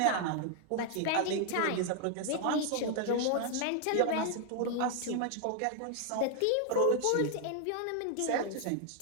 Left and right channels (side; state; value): both; different; correlation 0.00